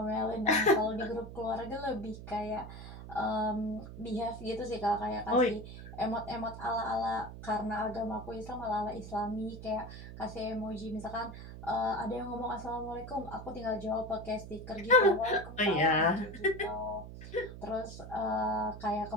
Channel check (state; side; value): noise; right; hum, 12 dB below the sound